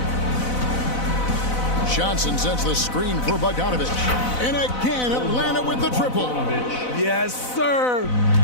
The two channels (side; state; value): right; late; 4.0 ms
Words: Johnson sends the screen for Bogdanovich. And again, Atlanta with the triple. Yes, sir.